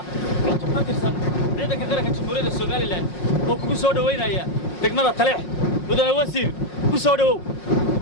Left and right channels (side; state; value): right; late; 5.5 ms